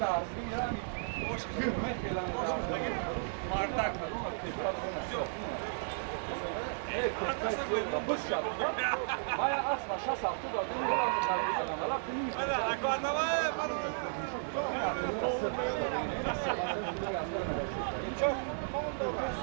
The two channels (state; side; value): silent; left; 55 dB below the other